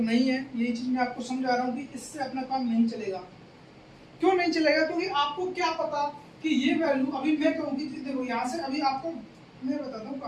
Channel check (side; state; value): both; identical; correlation 1.00